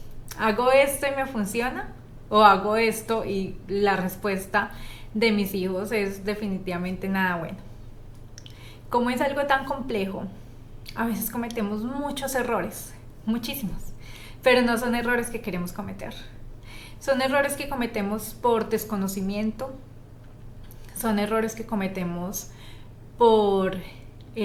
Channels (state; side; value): identical; both; correlation 1.00